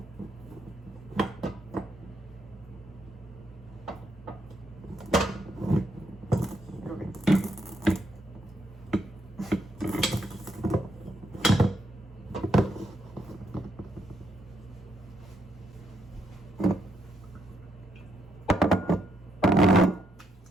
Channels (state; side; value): normal; both; correlation 0.76